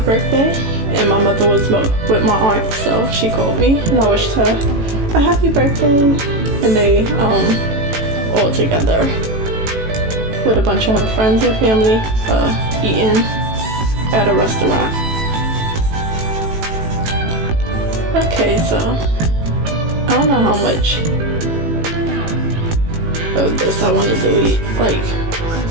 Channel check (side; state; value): left; late; 18 ms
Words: birthday, and my mother was with my aunt, so she called me, and I wished her a happy birthday. And they all together with a bunch of her friends and family eating at a restaurant. Okay, so I don't know how much of this I want to delete. Like,